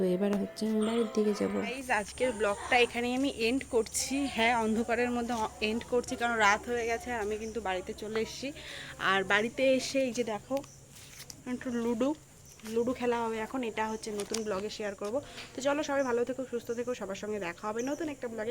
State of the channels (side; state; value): both; identical; correlation 1.00